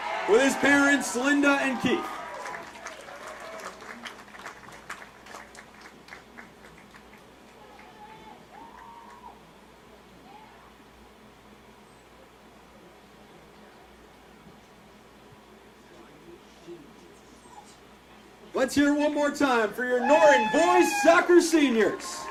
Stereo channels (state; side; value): identical; both; correlation 1.00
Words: with his parents, Linda and Keith. Let's hear it one more time for your Norton boys soccer seniors.